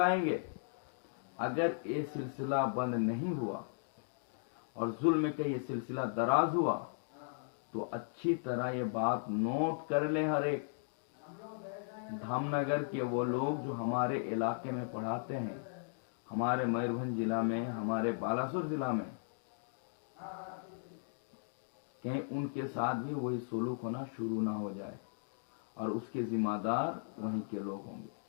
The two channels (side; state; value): right; silent; digital silence